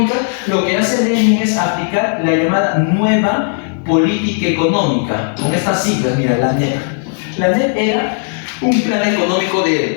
lo que hace Lenin es aplicar la llamada nueva política económica, con estas siglas, mira, la NEP. La NEP era un plan económico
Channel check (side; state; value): right; silent; 57 dB below the other